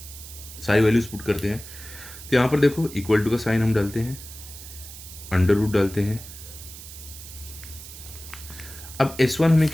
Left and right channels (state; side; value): noise; right; hiss, 14 dB below the sound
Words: सारी वैल्यूज पुट करते हैं। तो यहाँ पर देखो इक्वल टू का साइन हम डालते हैं, अंडर रूट डालते हैं। अब S1 हमें